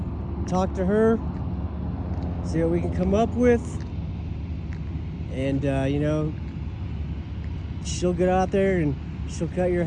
talk to her, see what we can come up with, and she'll get out there and she'll cut your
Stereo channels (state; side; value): identical; both; correlation 1.00